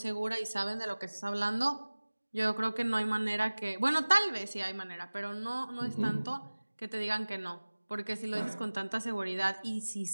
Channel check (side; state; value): both; inverted; correlation -1.00